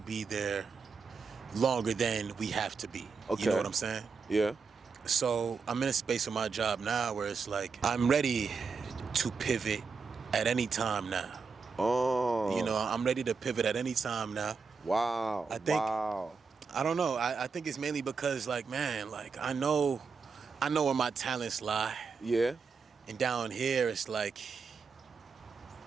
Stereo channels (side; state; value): left; quieter; 5.1 dB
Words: be there longer than we have to be. Okay. You know what I'm saying? Yeah. So I'm in a space with my job now where it's like I'm ready to pivot at any time now. Oh. I'm ready to pivot at any time now. Wow. I think- Wow. I don't know. I think it's mainly because, like, man, like I know where my talents lie. Yeah. And down here it's like